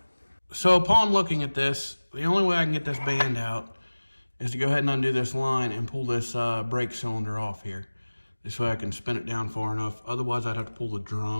So upon looking at this, the only way I can get this band out is to go ahead and undo this line and pull this brake cylinder off here. This way I can spin it down far enough. Otherwise, I'd have to pull the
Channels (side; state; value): both; inverted; correlation -1.00